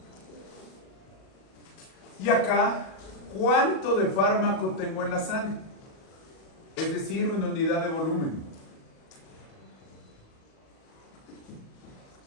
Y acá, ¿cuánto de fármaco tengo en la sangre? Es decir, una unidad de volumen.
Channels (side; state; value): right; late; 37 ms